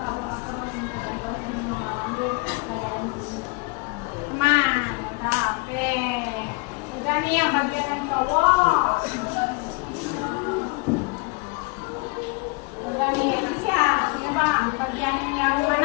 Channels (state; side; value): quieter; right; 28.9 dB